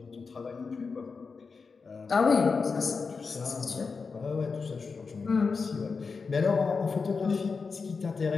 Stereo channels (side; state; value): right; quieter; 4.9 dB